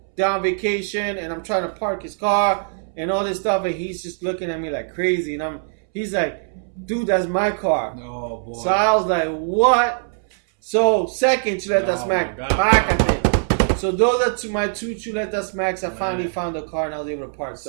down vacation, and I'm trying to park his car and all this stuff. And he's just looking at me like crazy. And he's like, dude, that's my car. Oh, boy. So I was like, what? So second chuleta smack, pácate. So those are my two chuleta smacks. I finally found the car and I was able to park.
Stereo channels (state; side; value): silent; left; 65 dB below the other